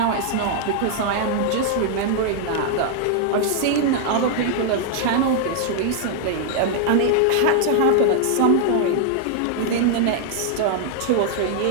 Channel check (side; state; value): both; different; correlation 0.00